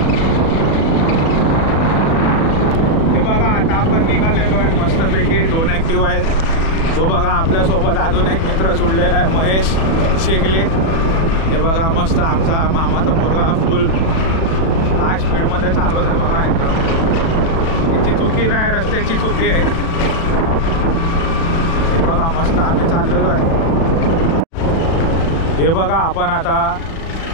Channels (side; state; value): right; late; 37 ms